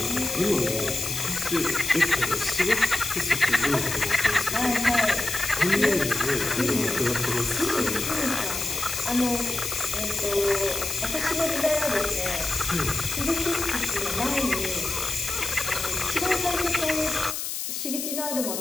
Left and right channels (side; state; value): left; noise; hiss, 4 dB below the sound